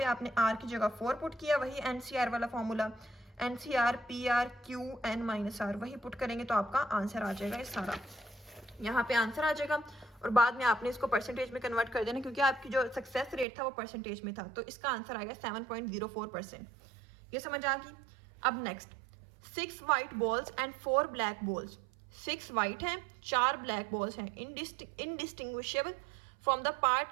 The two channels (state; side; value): drops out; left; at 13.5 s